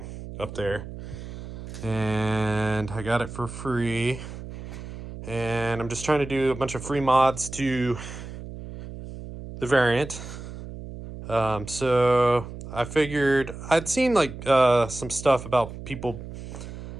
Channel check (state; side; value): noise; right; hum, 11 dB below the sound